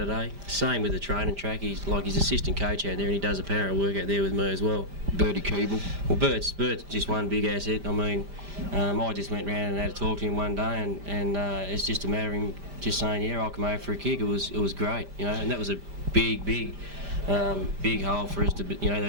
Same with the training track. He's assistant coach out there, and he does a power of work out there with me as well. Bertie Keeble. Well, Bert's just one big asset. I mean, I just went round and had a talk to him one day, and it's just a matter of him just saying, yeah, I'll come over for a kick. It was great, and that was a big hole for us to, that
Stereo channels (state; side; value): late; left; 5.0 ms